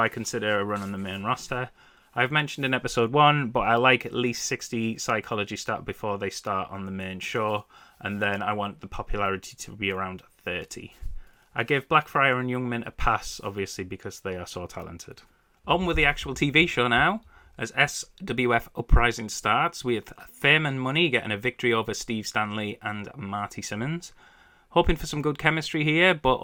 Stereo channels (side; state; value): both; identical; correlation 1.00